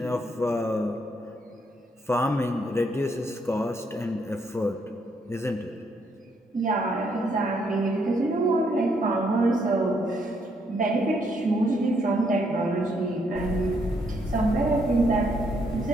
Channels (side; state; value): both; normal; correlation 0.73